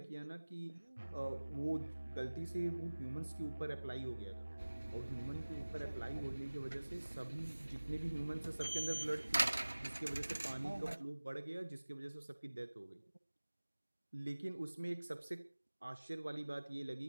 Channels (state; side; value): inverted; both; correlation -1.00